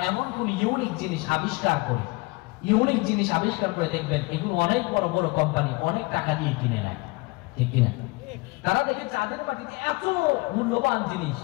এমন কোন ইউনিক জিনিস আবিষ্কার করে দেখবেন এগুলো অনেক বড় বড় কোম্পানি অনেক টাকা দিয়ে কিনে নেয়, ঠিক কিনা? তারা দেখে চাঁদের মাটিতে এত মূল্যবান জিনিস,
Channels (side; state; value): right; quieter; 25.0 dB